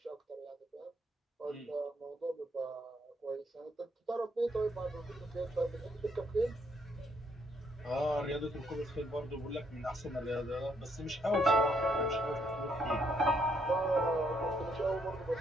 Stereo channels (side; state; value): both; normal; correlation 0.71